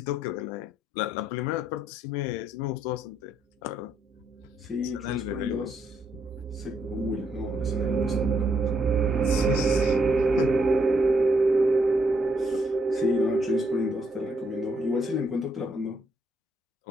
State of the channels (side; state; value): both; normal; correlation 0.74